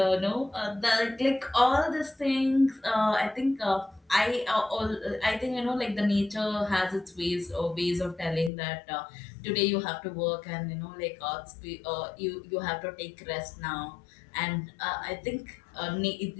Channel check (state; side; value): drops out; right; at 8.5 s